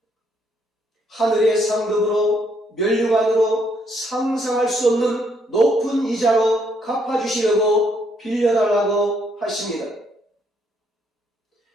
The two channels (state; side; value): normal; both; correlation 0.71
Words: 하늘의 상급으로 면류관으로 상상할 수 없는 높은 이자로 갚아주시려고 빌려달라고 하십니다.